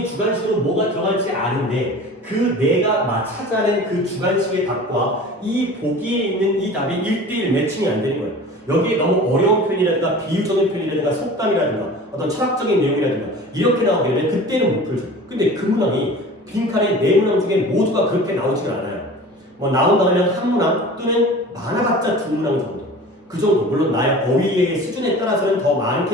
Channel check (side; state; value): both; normal; correlation 0.39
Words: 주관식으로 뭐가 들어갈지 아는데 그 내가 찾아낸 그 주관식의 답과 이 보기에 있는 이 답이 1대1 매칭이 안 되는 거예요. 여기에 너무 어려운 표현이라든가 비유적인 표현이라든가 속담이라든가 어떤 철학적인 내용이라든가 이렇게 나오게 되면 그때는 못 풀죠. 근데 그 문항이 빈칸의 네 문항 중에 모두가 그렇게 나오지가 않아요. 뭐 나온다면 한 문항 또는 많아봤자 두 문항 정도. 그 정도. 물론 나의 어휘의 수준에 따라서는 더